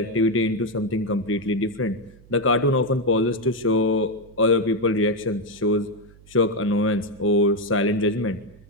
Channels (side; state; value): right; noise; hum, 24 dB below the sound